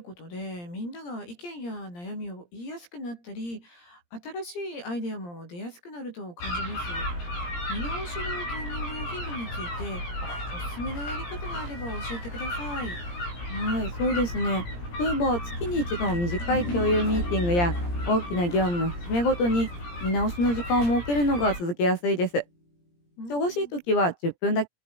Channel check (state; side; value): late; right; 17 ms